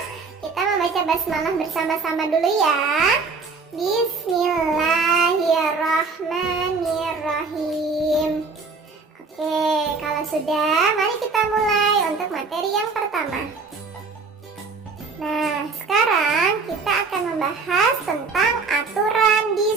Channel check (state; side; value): quieter; left; 4.5 dB